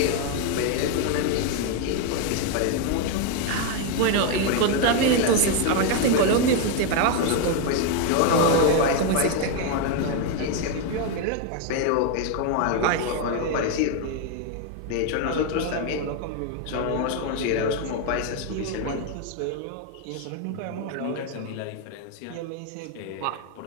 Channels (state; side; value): different; both; correlation 0.01